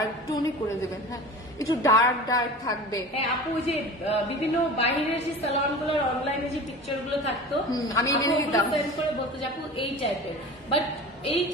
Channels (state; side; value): normal; both; correlation 0.35